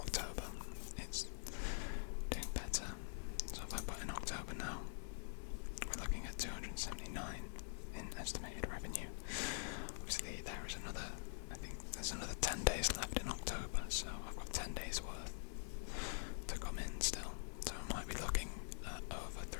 It's doing better. So if I put in October now, we're looking at 279 in estimated revenue. Obviously there is another, I think there's another 10 days left in October, so I've got 10 days worth to come in still. So I might be looking at over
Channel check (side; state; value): right; silent; digital silence